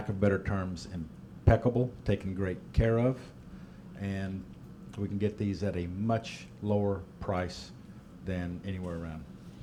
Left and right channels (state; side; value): identical; both; correlation 1.00